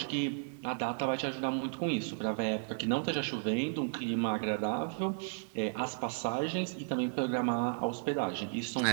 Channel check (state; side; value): silent; left; digital silence